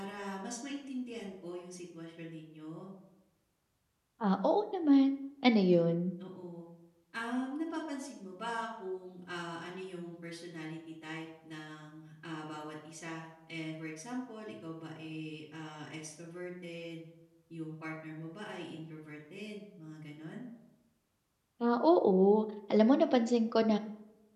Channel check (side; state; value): both; identical; correlation 1.00